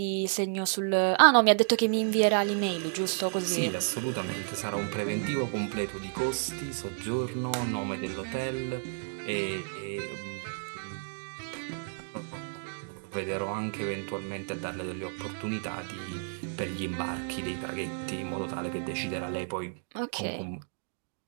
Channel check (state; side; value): silent; left; digital silence